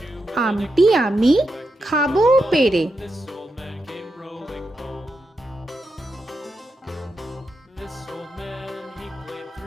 আমটি আমি খাবো পেরে।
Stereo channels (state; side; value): normal; both; correlation 0.87